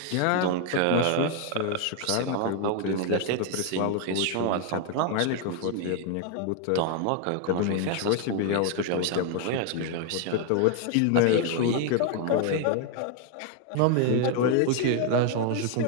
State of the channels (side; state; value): both; different; correlation 0.00